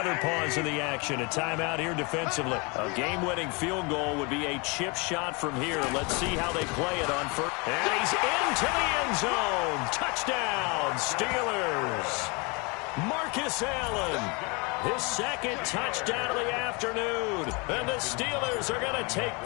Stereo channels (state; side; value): quieter; right; 29.6 dB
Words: pause in the action. A timeout here defensively. A game-winning field goal would be a chip shot from here. Let's see how they play it on first. And he's into the end zone. Touchdown, Steelers. Marcus Allen. His second touchdown of the afternoon. And the Steelers are going to take